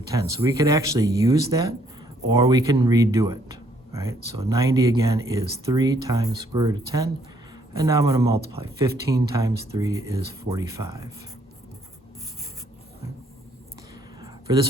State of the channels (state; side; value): normal; both; correlation 0.67